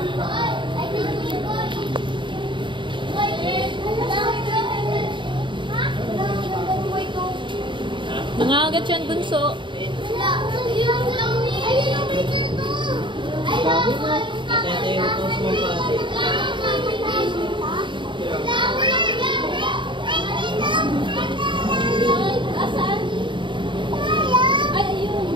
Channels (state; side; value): late; left; 0.23 ms